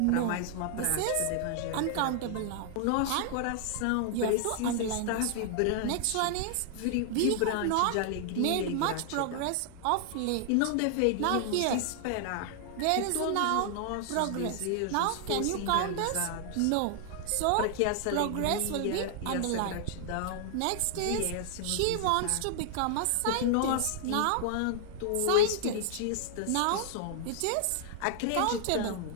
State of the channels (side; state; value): both; different; correlation 0.00